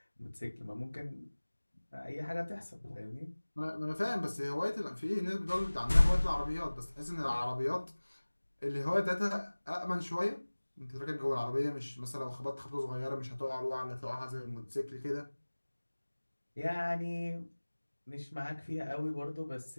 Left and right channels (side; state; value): both; inverted; correlation -1.00